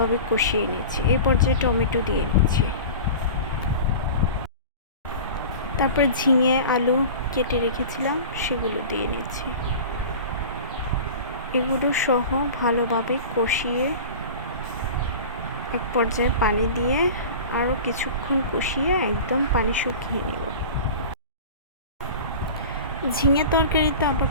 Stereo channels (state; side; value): inverted; both; correlation -0.35